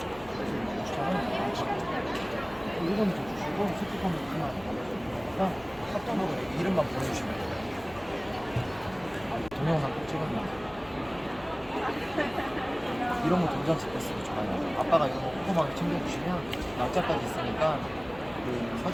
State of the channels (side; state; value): left; noise; hum, 21 dB below the sound